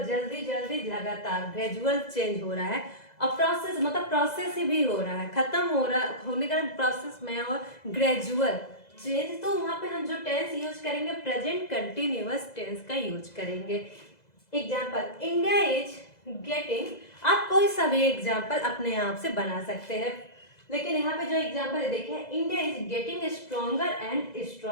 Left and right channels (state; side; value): late; right; 2.0 ms